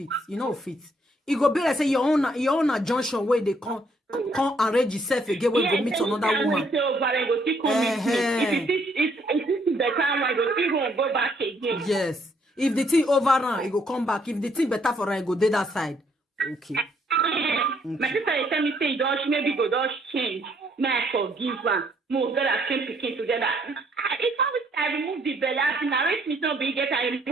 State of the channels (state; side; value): normal; both; correlation 0.68